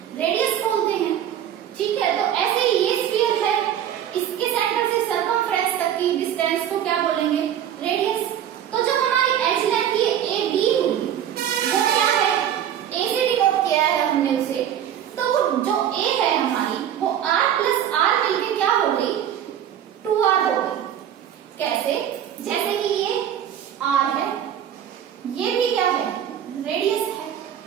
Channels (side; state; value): left; quieter; 10.0 dB